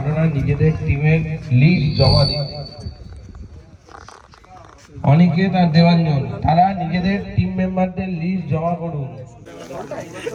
নিজেদের টিমের লিস্ট জমা দিন। অনিকেত আর দেবাঞ্জন তারা নিজেদের টিম মেম্বারদের লিস্ট জমা করুন।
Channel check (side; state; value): both; identical; correlation 1.00